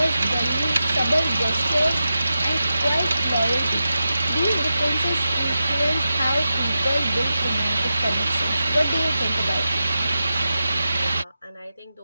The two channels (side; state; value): both; inverted; correlation -0.91